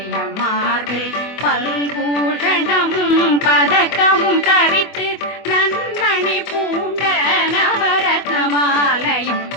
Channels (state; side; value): late; right; 24 ms